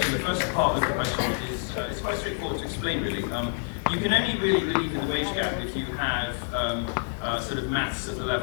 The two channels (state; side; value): silent; right; 56 dB below the other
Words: first part of the question is it's quite straightforward to explain, really. You can only really believe in the wage gap if you have sort of maths at the